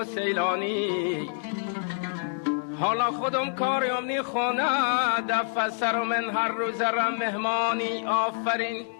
سیلانی. حالا خودم کاریم نی خونه، دفع سر من هر روز رم مهمانی. آفرین.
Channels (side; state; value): right; silent; digital silence